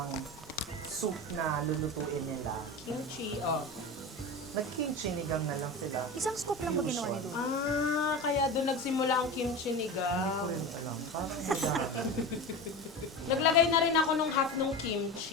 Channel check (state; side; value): normal; both; correlation 0.27